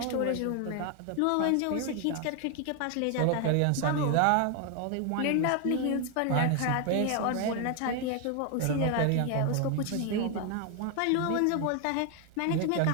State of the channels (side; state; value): both; different; correlation 0.01